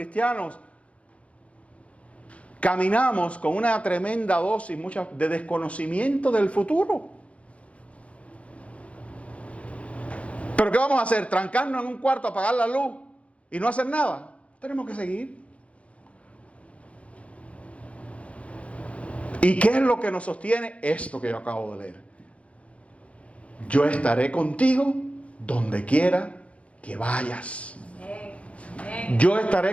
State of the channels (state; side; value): late; right; 0.063 ms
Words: caminamos con una tremenda dosis de desconocimiento del futuro. ¿Pero qué vamos a hacer? ¿Trancarnos en un cuarto, apagar la luz y no hacer nada? Tenemos que seguir. ¿Y qué es lo que nos sostiene? Esto que yo acabo de leer: yo estaré contigo donde quiera que vayas. Yo